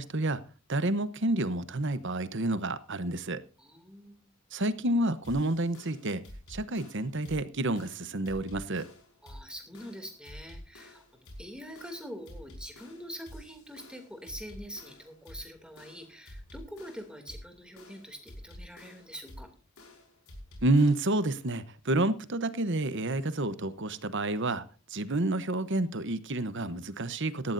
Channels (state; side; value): normal; both; correlation 0.49